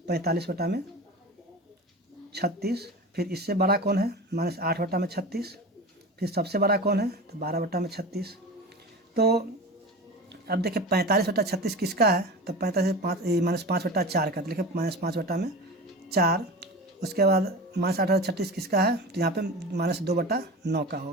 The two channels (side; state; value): both; normal; correlation 0.31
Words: फिर इससे बड़ा कौन है, -8/36। फिर सबसे बड़ा कौन है, तो 12/36। तो अब देखिए 45/36 किसका है, तो 45 -5/4 का, तो लिखे -5/4। उसके बाद -8/36 किसका है, तो यहाँ पे -2/9 का